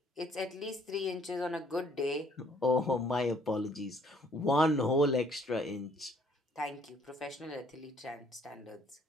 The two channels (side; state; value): both; normal; correlation 0.62